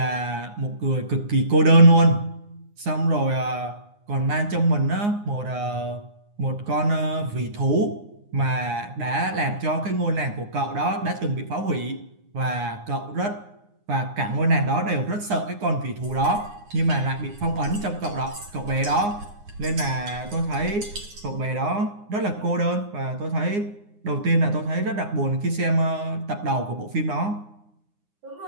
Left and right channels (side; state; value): left; late; 9.7 ms